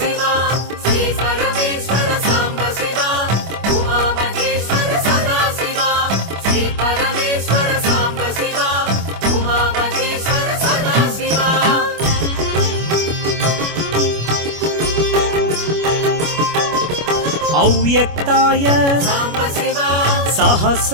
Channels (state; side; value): late; left; 25 ms